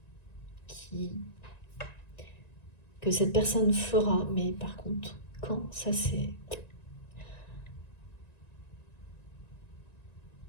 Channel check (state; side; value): late; right; 1.9 ms